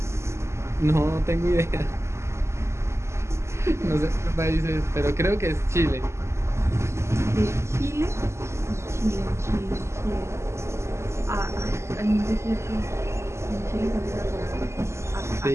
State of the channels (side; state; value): left; late; 0.13 ms